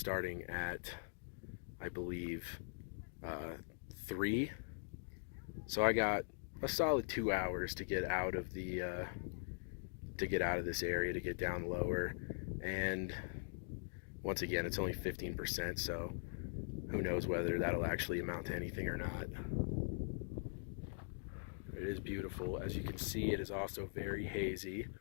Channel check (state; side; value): silent; right; digital silence